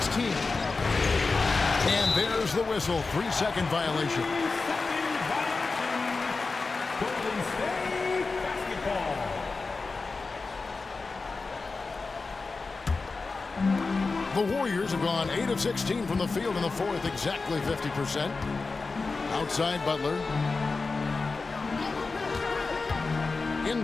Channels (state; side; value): quieter; right; 4.0 dB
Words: And there's the whistle. 3-second violation. The Warriors have gone 8 of 16 from the field in the fourth, exactly 50%. Outside Butler.